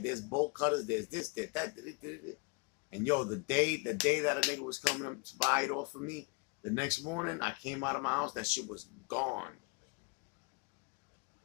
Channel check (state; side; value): quieter; right; 32.2 dB